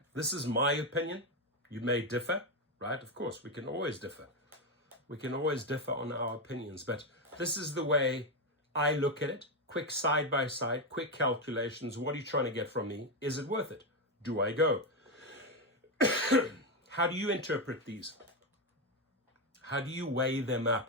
This is my opinion. You may differ, right? Of course, we can always differ. We can always differ on our opinions, but this is the way I look at it. Quick side by side, quick calculations. What are you trying to get from me? Is it worth it? Do I go? How do you interpret these? How do you weigh them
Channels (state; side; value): normal; both; correlation 0.08